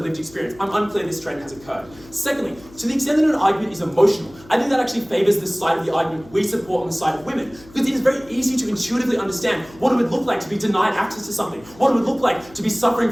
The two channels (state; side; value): noise; left; hum, 23 dB below the sound